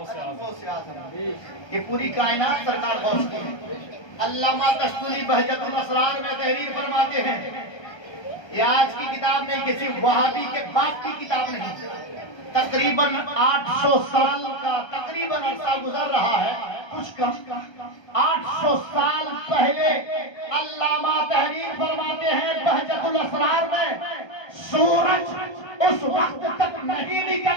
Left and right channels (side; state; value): right; late; 1.2 ms